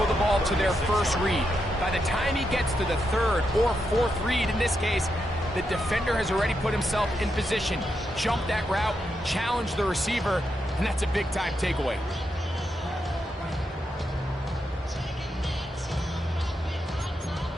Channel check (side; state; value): both; normal; correlation 0.83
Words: the ball to their first read. By the time he gets to the third or fourth read, in this case, the defender has already put himself in position, jump that route, challenge the receiver, and that's a big-time takeaway.